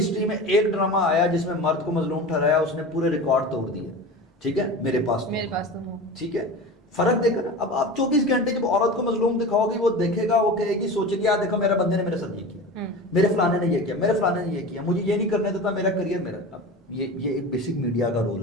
में एक ड्रामा आया जिसमें मर्द को मजलूम ठहराया, उसने पूरे रिकॉर्ड तोड़ दिए। ठीक है, मेरे पास तो ठीक है, फर्क देखा ना। अब आप 24 घंटे जब औरत को मजलूम दिखाओगे, वो देखेगा, वो कहेगी, सोचेगी यार देखो मेरे बंदे ने मेरे साथ ये किया, मेरे फलाने ने ये किया, मेरे फलाने ने ये किया, मुझे ये नहीं करने देता, मेरा करियर मेरा। अब ये एक बेसिक मीडिया का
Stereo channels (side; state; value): both; normal; correlation 0.31